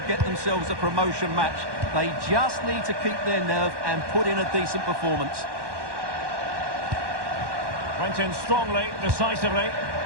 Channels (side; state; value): left; late; 1.1 ms